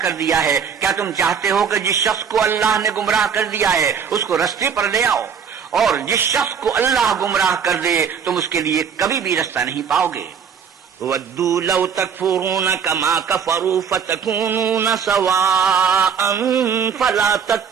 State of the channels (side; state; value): left; quieter; 7.1 dB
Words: کر دیا ہے؟ کیا تم چاہتے ہو کہ جس شخص کو اللہ نے گمراہ کر دیا ہے اس کو رستے پر لے آؤ، اور جس شخص کو اللہ گمراہ کر دے تم اس کے لیے کبھی بھی رستہ نہیں پاؤ گے۔ وَدُّوا لَوْ تَكْفُرُونَ كَمَا كَفَرُوا فَتَكُونُونَ سَوَاءً فَلَا